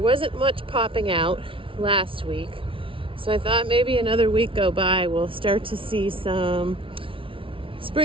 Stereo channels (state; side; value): late; left; 0.25 ms